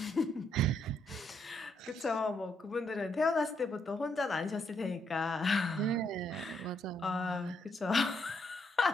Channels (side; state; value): both; normal; correlation 0.75